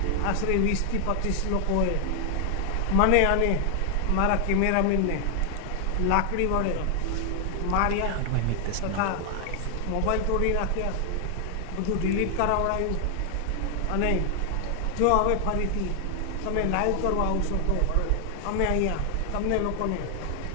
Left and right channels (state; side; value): different; both; correlation 0.00